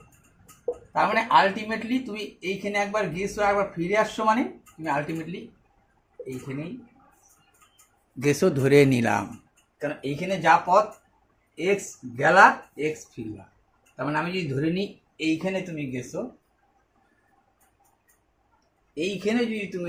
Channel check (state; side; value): identical; both; correlation 1.00